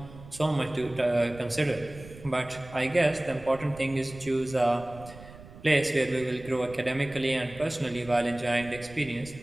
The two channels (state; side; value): noise; right; rumble, 18 dB below the sound